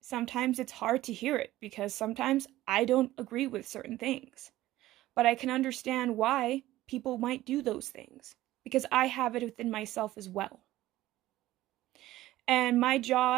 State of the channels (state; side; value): quieter; left; 15.6 dB